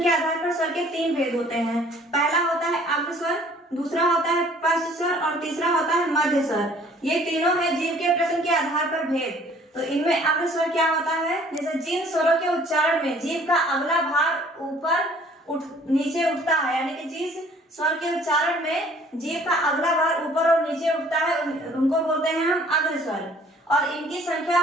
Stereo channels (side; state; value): both; normal; correlation 0.55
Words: के आधार पर स्वर के 3 भेद होते हैं। पहला होता है अग्र स्वर, दूसरा होता है पश्च स्वर और तीसरा होता है मध्य स्वर। ये तीनों है जीव के प्रयत्न के आधार पर भेद। तो इनमें अग्र स्वर क्या होता है, जैसे जिन स्वरों के उच्चारण में जीव का अगला भाग ऊपर नीचे उठता है, यानी कि जिस स्वर के उच्चारण में जीव का अगला भाग ऊपर और नीचे उठता है, उनको बोलते हैं हम अग्र स्वर। और इनकी संख्या